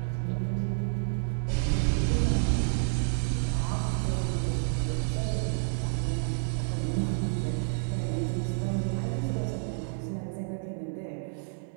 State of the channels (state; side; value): silent; left; 55 dB below the other